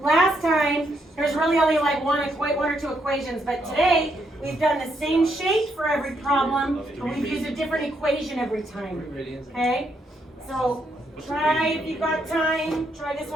last time there's really only like one or two equations, but today we've done the same shape for every problem, but we've used a different equation every time. Okay? So try if you've got time, try this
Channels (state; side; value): normal; both; correlation 0.76